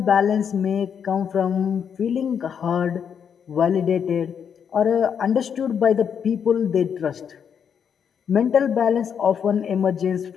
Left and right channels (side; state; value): right; quieter; 7.5 dB